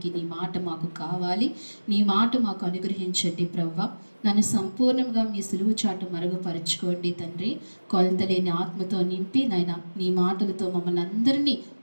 నీ మాట మాకు కావాలి, నీ మాట మాకు అనుగ్రహించండి ప్రవ్వా. నన్ను సంపూర్ణంగా మీ సులువు చాటు మరుగుపరుచుకోండి తండ్రి. కొలతలేని ఆత్మతో నింపి నాయన నీ మాటలతో మమ్మల్ని అందరినీ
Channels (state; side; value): inverted; both; correlation -1.00